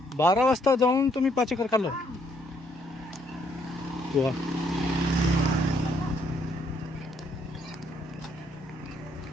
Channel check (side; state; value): both; normal; correlation 0.70